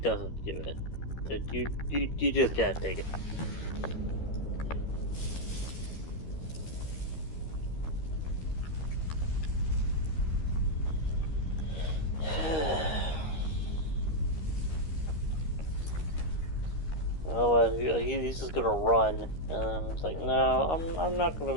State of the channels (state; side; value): late; right; 13 ms